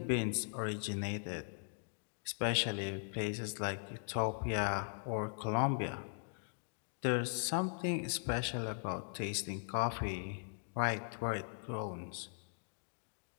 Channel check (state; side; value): silent; right; digital silence